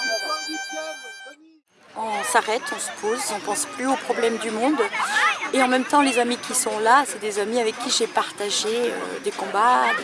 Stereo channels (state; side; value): identical; both; correlation 1.00